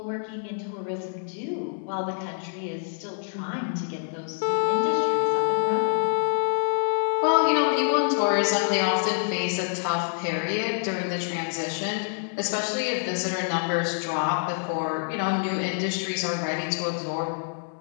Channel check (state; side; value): silent; right; digital silence